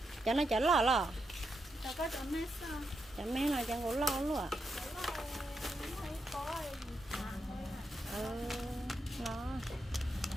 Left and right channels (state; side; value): normal; both; correlation 0.84